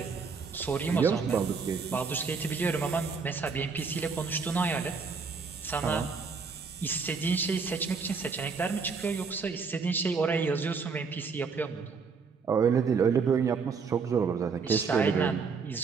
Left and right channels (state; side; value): quieter; left; 5.2 dB